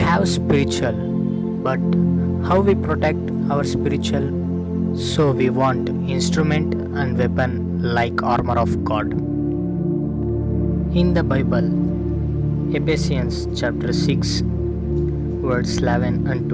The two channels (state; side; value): identical; both; correlation 1.00